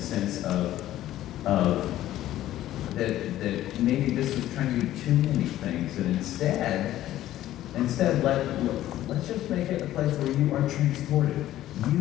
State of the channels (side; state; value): right; quieter; 13.7 dB